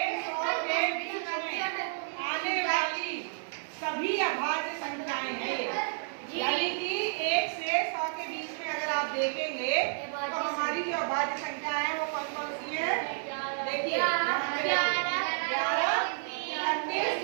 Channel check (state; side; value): silent; left; 57 dB below the other